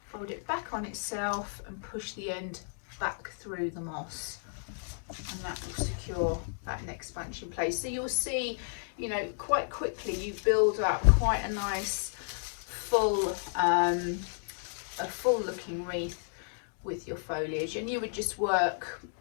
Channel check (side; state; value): right; silent; digital silence